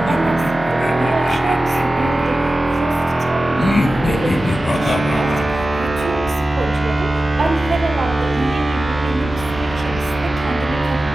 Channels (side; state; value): both; normal; correlation 0.95